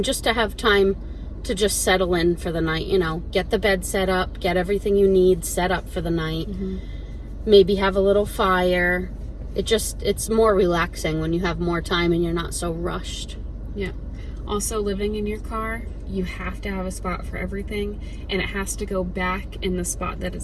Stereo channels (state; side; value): identical; both; correlation 1.00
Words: just to have time to just settle in for the night, you know, get the bed set up, get everything you need set up for the night. maybe have a little fire. It's more relaxing when you have more time and you're not so rushed. Yeah. Also, living in your car, you have to have a spot for everything, and it has to go back in the spot that